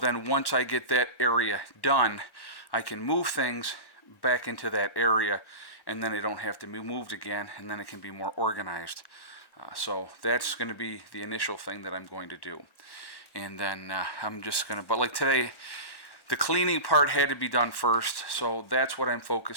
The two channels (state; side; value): late; right; 1.1 ms